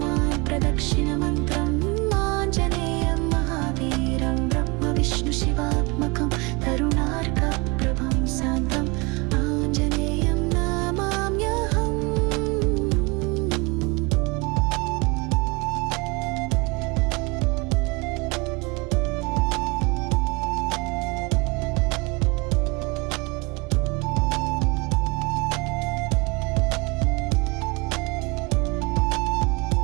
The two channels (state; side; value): quieter; left; 27.4 dB